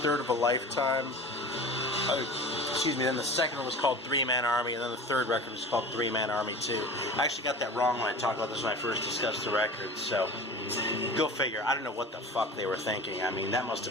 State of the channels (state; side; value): normal; both; correlation 0.36